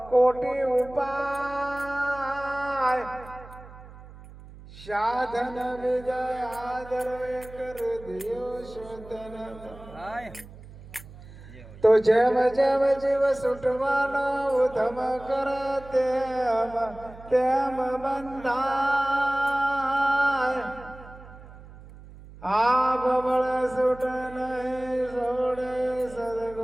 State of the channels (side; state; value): right; noise; hum, 18 dB below the sound